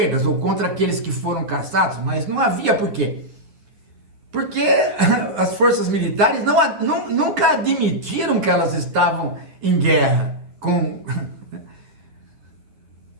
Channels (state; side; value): late; left; 10 ms